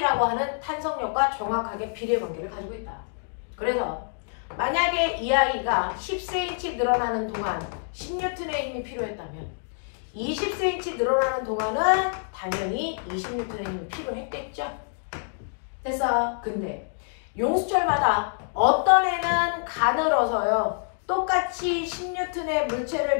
하는 탄성력과 정확하게 비례 관계를 가지고 있다. 그래서 만약에 이 아이가 10cm 늘어나는 동안 10N의 힘이 필요했다면 20cm 늘어나는 동안은 당연히 20N의 힘이 필요했겠죠. 됐어. 근데 용수철마다 어떤 애는 가늘어서요. 똑같이 10N의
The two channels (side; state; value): right; silent; digital silence